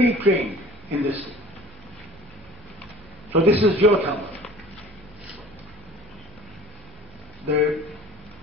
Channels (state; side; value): normal; both; correlation 0.45